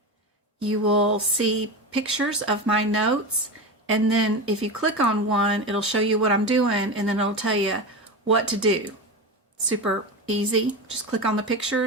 you will see pictures of my notes, and then if you click on one, it'll show you what I'm doing, and then it'll tell you what to do. Super easy. Just click on the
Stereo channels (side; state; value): both; normal; correlation 0.22